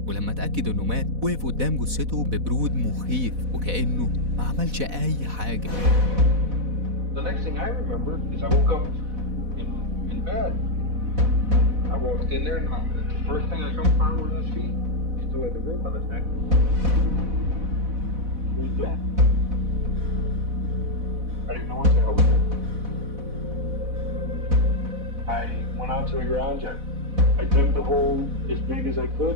ولما اتأكد انه مات وقف قدام جثته ببرود مخيف وكأنه ما عملش اي حاجة. The next thing I remember is I woke up in bed. I walked in there and the first thing I come upon was his feet. He still had the rope on his neck. What was that? I didn't know what the hell was it. I went out to the garage. I dug the hole as big as I could.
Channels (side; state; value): left; late; 4.1 ms